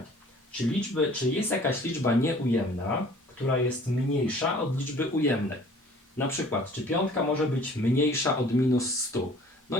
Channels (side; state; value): both; normal; correlation 0.51